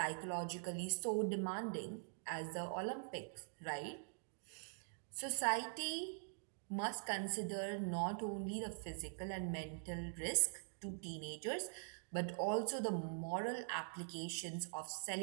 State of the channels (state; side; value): silent; left; digital silence